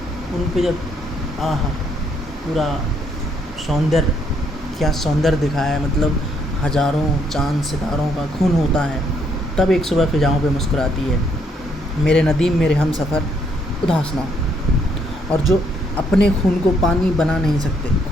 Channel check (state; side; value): normal; both; correlation 0.71